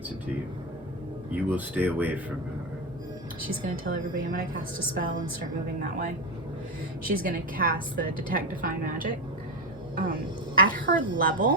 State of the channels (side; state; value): both; normal; correlation 0.13